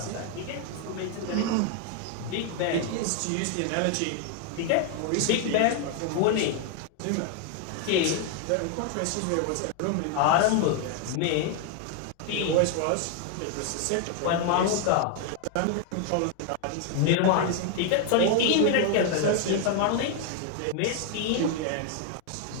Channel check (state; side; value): different; both; correlation 0.00